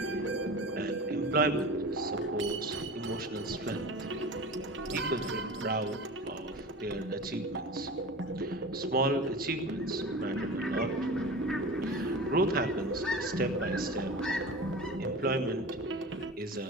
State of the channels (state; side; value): normal; both; correlation 0.33